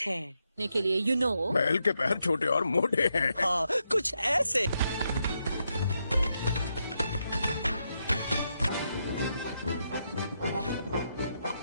है। के लिए यू नो। बैल के पैर छोटे और मोटे हैं। हाँ, कुछ ऐसे।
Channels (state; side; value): inverted; both; correlation -0.82